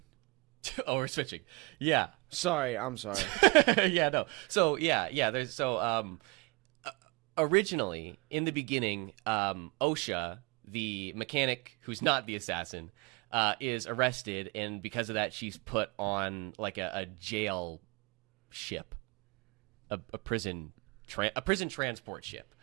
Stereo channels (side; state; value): left; quieter; 28.4 dB